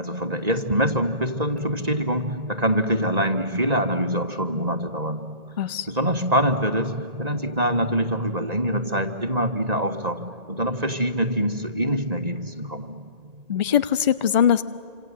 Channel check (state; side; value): late; left; 1.9 ms